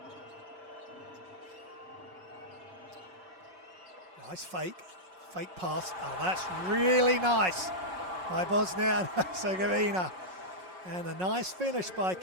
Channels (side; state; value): left; late; 5.5 ms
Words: Nice fake pass. Oh, that's really nice by Bosnia and Herzegovina. And a nice finish by